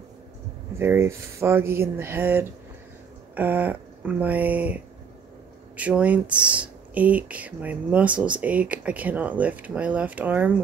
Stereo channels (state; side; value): quieter; left; 6.4 dB